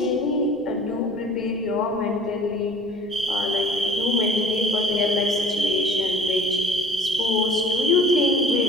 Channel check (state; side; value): noise; left; rumble, 28 dB below the sound